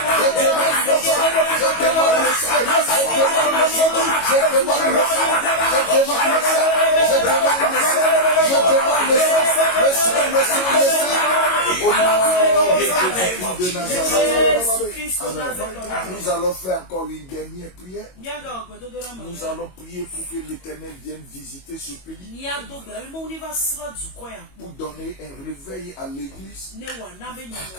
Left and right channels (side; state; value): right; late; 22 ms